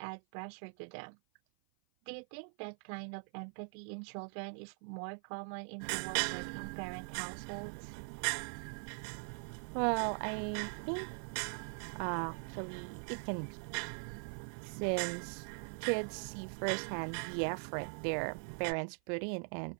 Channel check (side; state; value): left; silent; 50 dB below the other